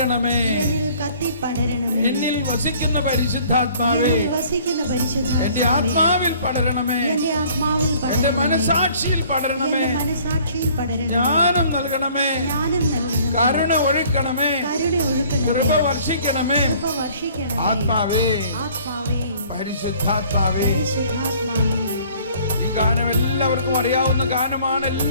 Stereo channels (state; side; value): inverted; both; correlation -0.55